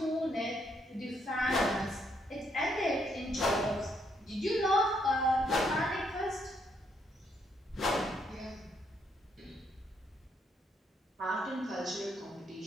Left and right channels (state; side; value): normal; both; correlation 0.73